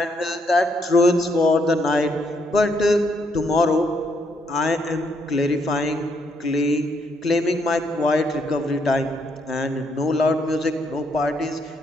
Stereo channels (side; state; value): both; normal; correlation 0.74